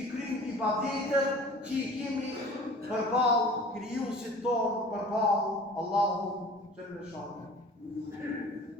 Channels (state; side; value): normal; both; correlation 0.44